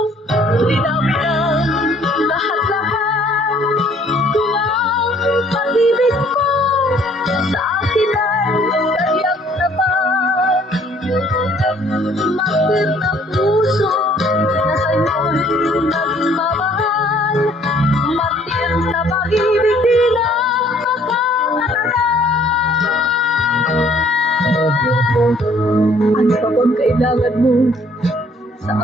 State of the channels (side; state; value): both; normal; correlation 0.60